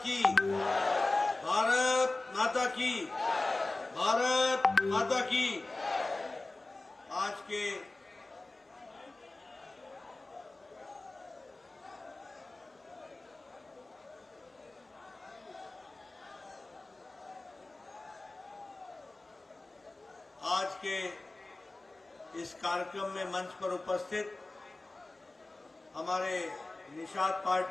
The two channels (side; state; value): right; quieter; 3.0 dB